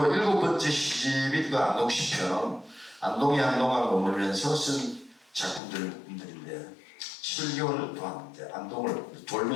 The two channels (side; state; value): right; drops out; at 5.6 s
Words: 7번째 시집이 그 안동시편은 안동에 한동안 머물면서 쓴 작품들인데 7개월 동안 이제 안동을